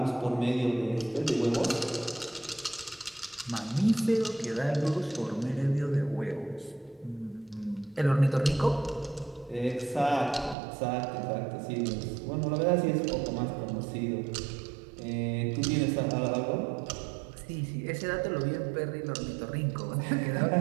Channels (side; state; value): left; drops out; at 10.6 s